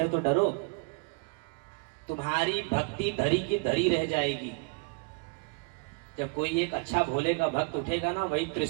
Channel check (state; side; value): quieter; left; 31.1 dB